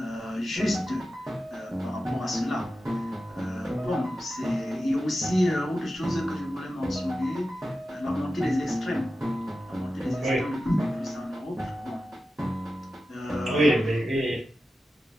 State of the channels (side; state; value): both; normal; correlation 0.92